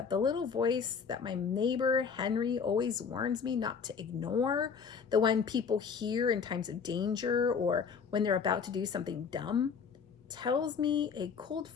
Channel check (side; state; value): right; quieter; 6.1 dB